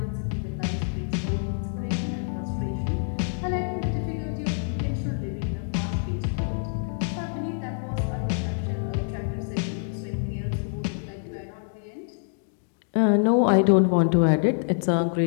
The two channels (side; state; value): right; silent; digital silence